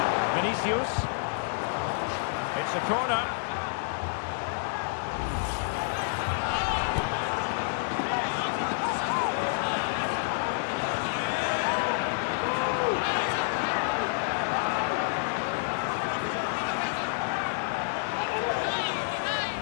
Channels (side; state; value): right; silent; 56 dB below the other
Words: Vinicius. It's a corner.